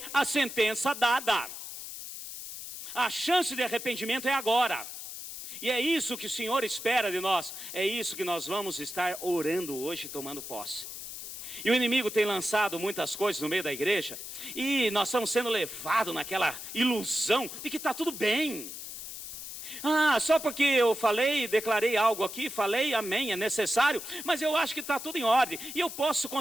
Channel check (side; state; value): left; noise; hiss, 10 dB below the sound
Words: a sentença dada. A chance de arrependimento é agora. E é isso que o Senhor espera de nós. É isso que nós vamos estar orando hoje, tomando posse. E o inimigo tem lançado muitas coisas no meio da igreja, e nós estamos sendo levados naquela ilusão de que está tudo bem. Só porque eu falei, declarei algo aqui, falei, amém, é necessário, mas eu acho que está tudo em ordem, e eu posso